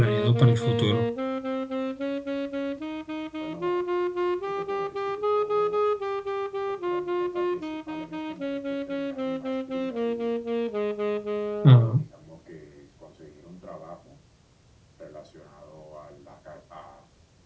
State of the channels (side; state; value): both; identical; correlation 1.00